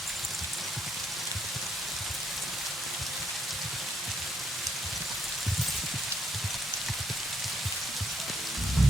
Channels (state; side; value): normal; both; correlation 0.74